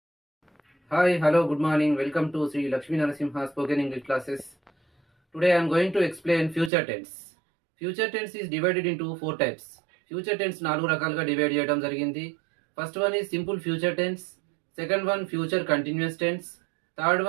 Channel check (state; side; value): drops out; left; at 6.7 s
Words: hello, good morning. Welcome to Sri Lakshmi Narasimha Spoken English classes. Today I am going to explain future tense. Future tense is divided into 4 types. Future tense 4 రకాలుగా divide చేయడం జరిగింది. First one is simple future tense, second one future continuous tense, third